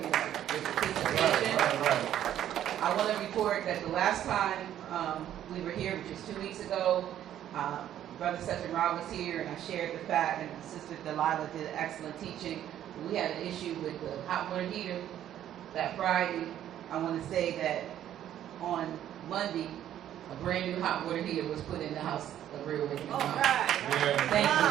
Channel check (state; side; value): quieter; left; 11.3 dB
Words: participation. Right. I want to report that the last time we were here, which was 2 weeks ago, Brother Session Rob was here, and I shared the fact, and Sister Delilah did excellent teaching. We had an issue with the hot water heater that Friday. I want to say that on Monday, a brand new hot water heater was put in the house of Real Awakening. All right. Yeah. Thank you.